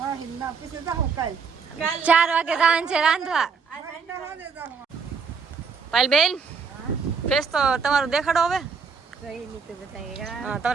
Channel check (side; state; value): left; quieter; 5.5 dB